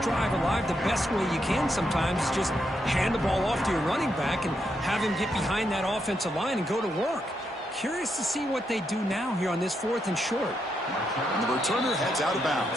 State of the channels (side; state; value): both; normal; correlation 0.81